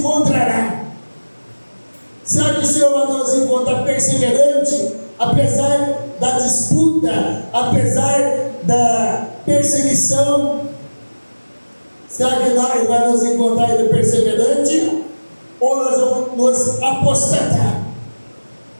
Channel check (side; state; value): both; inverted; correlation -1.00